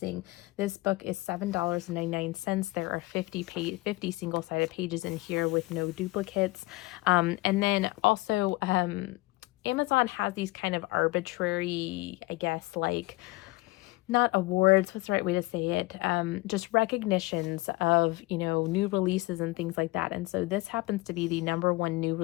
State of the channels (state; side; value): quieter; right; 21.9 dB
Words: this book is $7.99. There are 50 single-sided pages in here with no duplicates. And then also Amazon has these kind of arbitrary, I guess, like not awards, what's the right way to say it? Just recognitions of, you know, new releases and things like that. And so this happens to be the #1 new